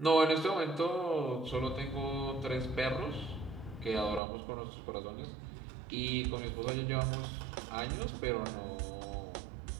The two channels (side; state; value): left; drops out; at 4.2 s